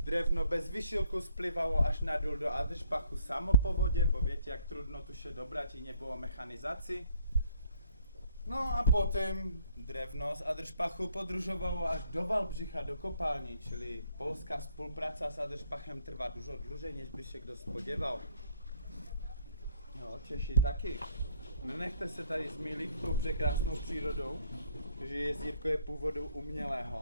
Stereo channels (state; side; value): inverted; both; correlation -0.64